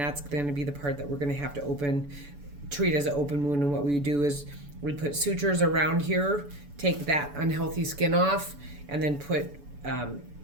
going to be the part that we're going to have to treat as an open wound. And what we do is we put sutures around here, take that unhealthy skin off, and then put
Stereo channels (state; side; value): late; left; 7.0 ms